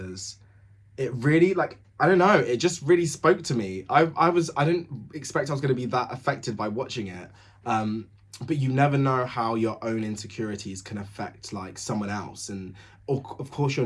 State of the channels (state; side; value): identical; both; correlation 1.00